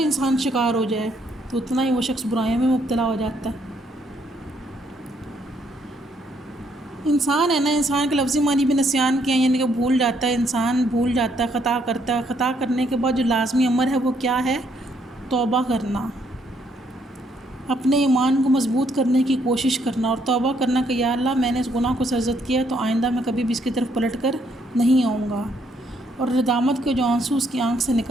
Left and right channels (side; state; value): both; normal; correlation 0.71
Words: شکار ہو جائے تو اتنا ہی وہ شخص برائیوں میں مبتلا ہو جاتا ہے۔ انسان ہے نا، انسان کے لفظی معنی بھی نسیان کے ہیں، یعنی کہ بھول جاتا ہے، انسان بھول جاتا ہے، خطا کرتا ہے، خطا کرنے کے بعد جو لازمی امر ہے وہ کیا ہے، توبہ کرنا، اپنے ایمان کو مضبوط کرنے کی کوشش کرنا، اور توبہ کرنا کہ یا اللہ میں نے اس گناہ کو سرزد کیا تو آئندہ میں کبھی بھی اس کی طرف پلٹ کر نہیں آؤں گا، اور ندامت کے جو آنسو اس کی آنکھ سے